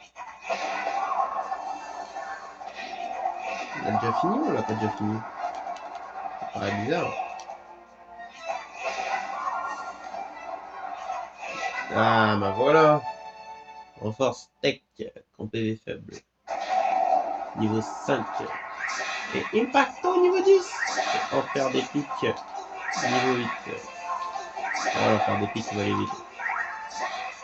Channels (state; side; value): identical; both; correlation 1.00